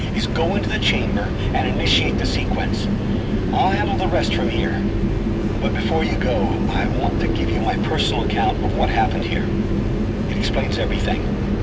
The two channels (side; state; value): both; identical; correlation 1.00